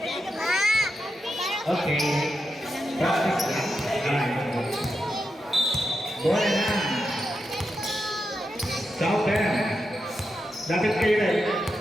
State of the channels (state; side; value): normal; both; correlation 0.87